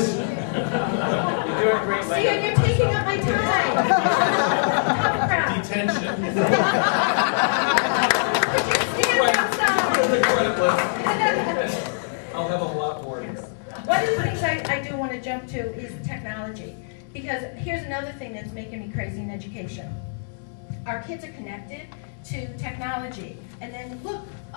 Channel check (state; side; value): silent; right; digital silence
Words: see, you're taking up my time. Tough crowd. Detention. Could you stand outside? I'll have a lot more. One of the things I do want to jump to is technology. Because here's another thing that's making me crazy in education. Our kids are connected to technology. And then look,